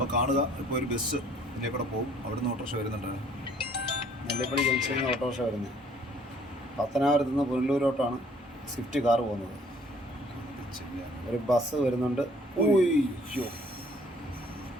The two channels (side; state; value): both; normal; correlation 0.59